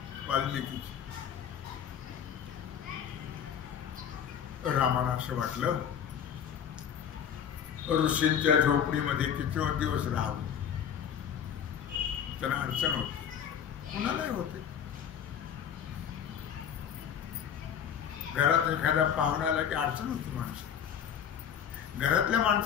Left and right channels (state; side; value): quieter; right; 8.6 dB